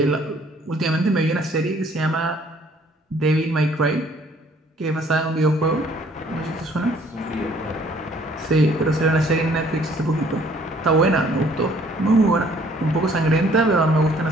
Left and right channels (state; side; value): normal; both; correlation 0.59